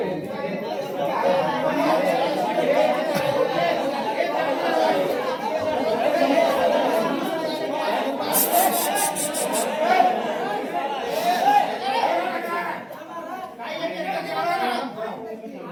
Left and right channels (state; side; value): identical; both; correlation 1.00